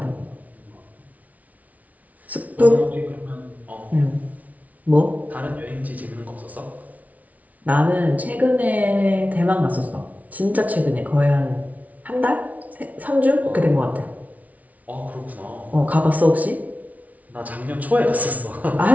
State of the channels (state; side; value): late; left; 0.071 ms